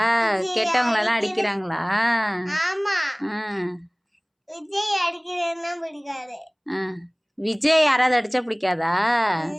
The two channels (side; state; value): both; identical; correlation 1.00